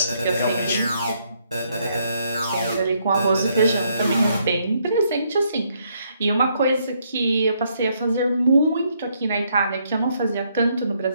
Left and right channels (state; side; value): inverted; both; correlation -0.73